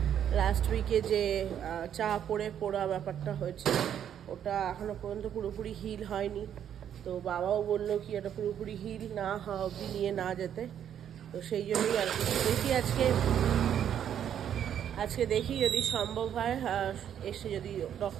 লাস্ট উইকে যে চা পড়ে পোড়া ব্যাপারটা হয়েছে, ওটা এখনো পর্যন্ত পুরোপুরি হিল হয়নি। তো বাবাও বললো কি এটা পুরোপুরি হিল না হওয়া অবধি নিয়ে না যেতে। তো সেই জন্যই আর কি দেখি আজকে দেখি যদি সম্ভব হয় এসে যদি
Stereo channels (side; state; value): left; quieter; 9.5 dB